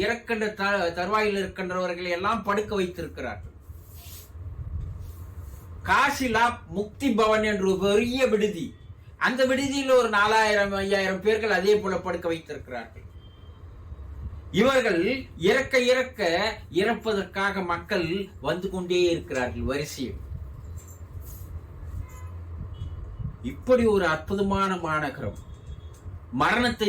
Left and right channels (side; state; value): both; identical; correlation 1.00